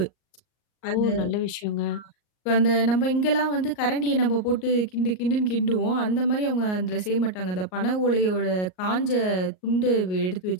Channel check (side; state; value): right; late; 38 ms